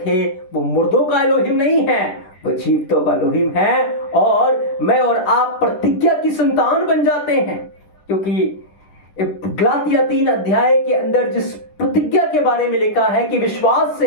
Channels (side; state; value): right; late; 10 ms